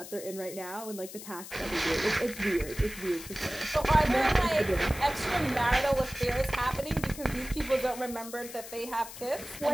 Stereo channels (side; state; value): left; noise; hiss, 13 dB below the sound